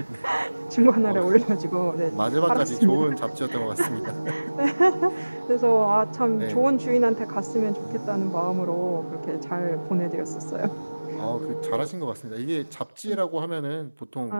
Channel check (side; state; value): both; inverted; correlation -1.00